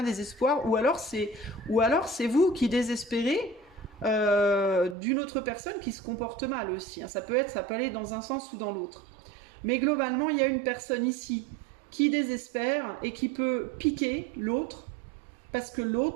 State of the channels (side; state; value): left; drops out; at 5.0 s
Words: désespoir. Ou alors c'est vous qui désespérez d'une autre personne qui se comporte mal aussi. Hein. Ça peut aller dans un sens ou dans l'autre. Mais globalement, il y a une personne ici qui désespère et qui peut piquer l'autre. Parce que